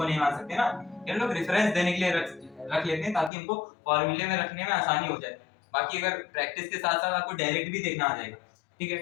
नहीं मान सकते ना, ये लोग रेफरेंस देने के लिए रख लेते हैं ताकि हमको फॉर्मूले में रखने में आसानी हो जाए। बाकी अगर प्रैक्टिस के साथ साथ आपको डायरेक्ट भी देखना आ जाएगा। ठीक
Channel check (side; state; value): right; drops out; at 3.3 s